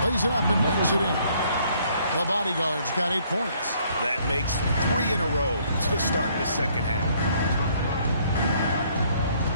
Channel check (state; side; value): inverted; both; correlation -0.64